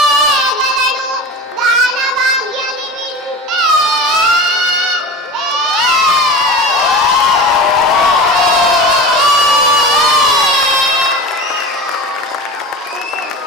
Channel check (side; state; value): both; normal; correlation 0.31